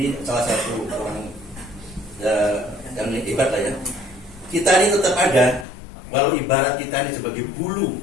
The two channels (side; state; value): right; drops out; at 5.7 s